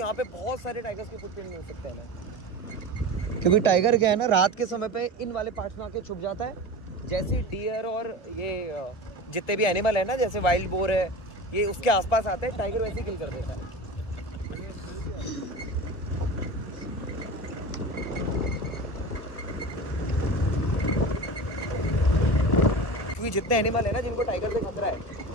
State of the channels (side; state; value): right; late; 1.1 ms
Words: पे बहुत सारे टाइगर्स के फुटप्रिंट मिल सकते हैं हमें। क्योंकि टाइगर क्या है ना, रात के समय पे इन वाले पार्ट्स में आके छुप जाता है। जैसे डियर और ये जितने भी एनिमल है ना, जैसे वाइल्ड बोर है, ये उसके आसपास आते हैं, टाइगर वैसे ही किल कर देता है। क्योंकि जितने एनिमल है ना जिनको टाइगर से खतरा है,